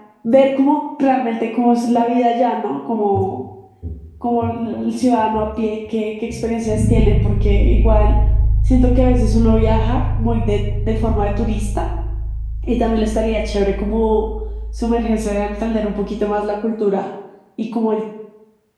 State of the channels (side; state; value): both; identical; correlation 1.00